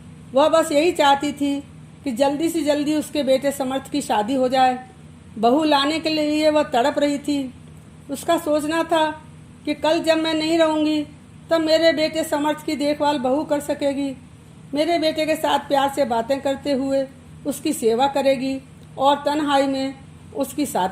वह बस यही चाहती थी कि जल्दी से जल्दी उसके बेटे समर्थ की शादी हो जाए। बहू लाने के लिए वह तड़प रही थी। उसका सोचना था कि कल जब मैं नहीं रहूँगी तब मेरे बेटे समर्थ की देखभाल बहू कर सकेगी। मेरे बेटे के साथ प्यार से बातें करते हुए उसकी सेवा करेगी और तन्हाई में उसकी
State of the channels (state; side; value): identical; both; correlation 1.00